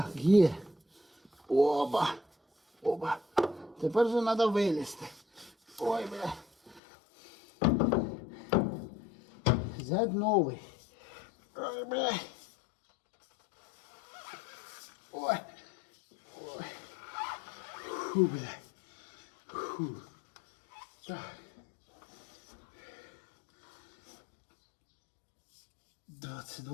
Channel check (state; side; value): drops out; right; at 6.8 s